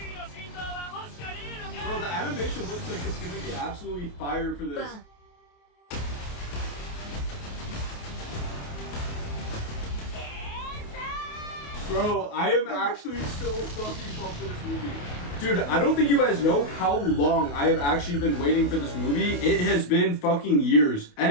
ーの心臓は欲しかねえのか Bro, the animation looks like it's gonna be absolutely fire for this. Bro, I am actually so fucking pumped for this movie. Dude, I don't think you guys know how long I have actually been waiting for this movie. It has been fucking years.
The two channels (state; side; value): late; right; 28 ms